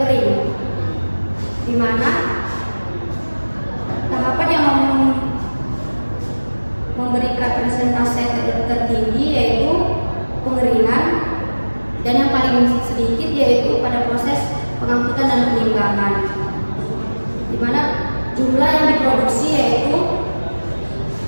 di mana tahapan yang memberikan persentase tertinggi yaitu pengeringan, dan yang paling sedikit yaitu pada proses pengangkutan dan penimbangan, di mana jumlah yang diproduksi yaitu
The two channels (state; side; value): inverted; both; correlation -1.00